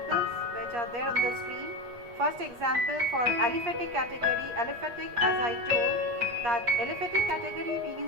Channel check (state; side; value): late; left; 8.4 ms